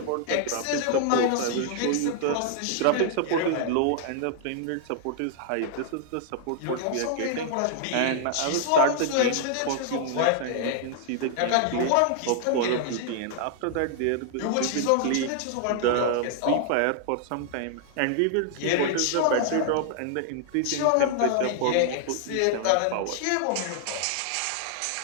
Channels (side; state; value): both; different; correlation -0.01